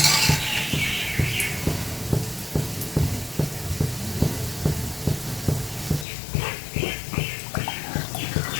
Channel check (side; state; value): right; drops out; at 6.1 s